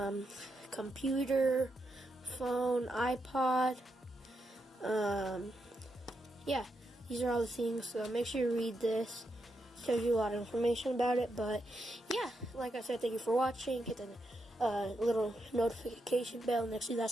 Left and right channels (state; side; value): normal; both; correlation 0.83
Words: computer, phone, iPod. Yeah, these are all the things, so make sure you read this. It tells you a lot of information about it. But yeah, like I said, thank you for watching. Hit the little notification bell next to that